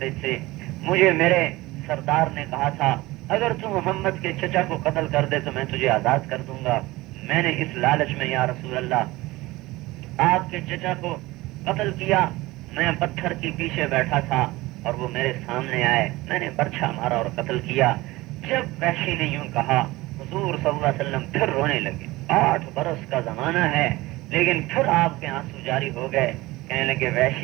تھے۔ مجھے میرے سردار نے کہا تھا اگر تم محمد کے چچا کو قتل کر دے تو میں تجھے آزاد کر دوں گا۔ میں نے اس لالچ میں یا رسول اللہ آپ کے چچا کو قتل کیا۔ میں پتھر کے پیچھے بیٹھا تھا اور وہ میرے سامنے آئے، میں نے برچھا مارا اور قتل کیا۔ جب وحشی نے یوں کہا حضور صلی اللہ علیہ وسلم پھر رونے لگے۔ 8 برس کا زمانہ ہے لیکن پھر آپ کے آنسو جاری ہو گئے، کہنے لگے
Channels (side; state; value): left; quieter; 19.8 dB